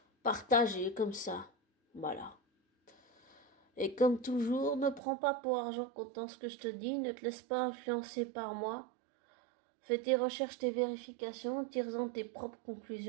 partager comme ça. Voilà. Et comme toujours, ne prends pas pour argent comptant ce que je te dis, ne te laisse pas influencer par moi. Fais tes recherches, tes vérifications, tire-en tes propres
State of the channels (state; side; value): drops out; left; at 5.0 s